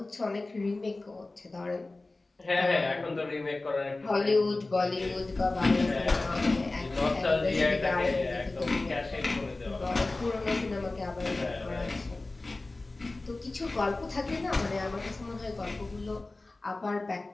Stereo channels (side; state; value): right; quieter; 3.2 dB